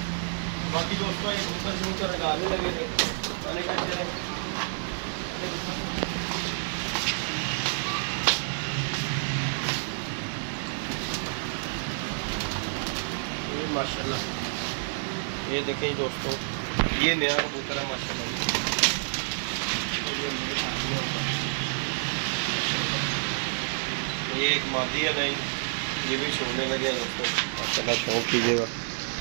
बाकी दोस्तों ये कबूतर शबूतर निकालने लगे थे। मैंने कहा चले ये माशाल्लाह ये देखें दोस्तों, ये नया कबूतर है माशाल्लाह। ये एक मादी है नहीं, ये भी छोड़ने लगे हैं दोस्तों। माशाल्लाह शौक कीजिएगा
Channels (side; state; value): left; silent; digital silence